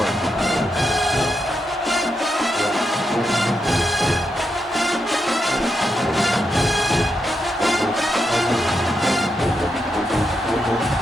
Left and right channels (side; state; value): both; normal; correlation 0.84